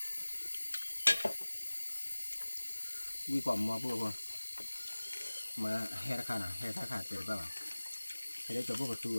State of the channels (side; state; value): both; inverted; correlation -1.00